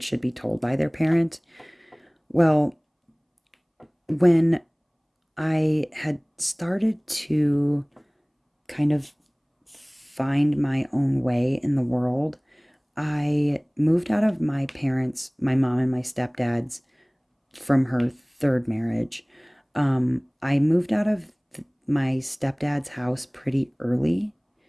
should be told by their parent. Well, when I had started to kind of find my own way in the world, I moved out of my parents, my mom and my stepdad's, from her third marriage. I moved out of my stepdad's house pretty early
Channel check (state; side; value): identical; both; correlation 1.00